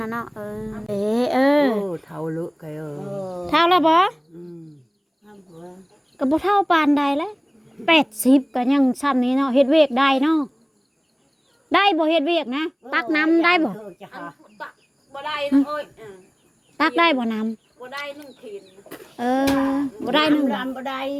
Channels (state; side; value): identical; both; correlation 1.00